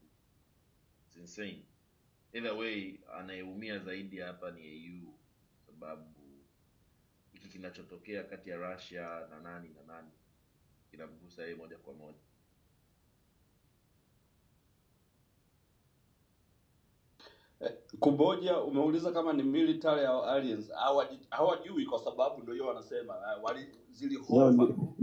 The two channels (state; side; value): identical; both; correlation 1.00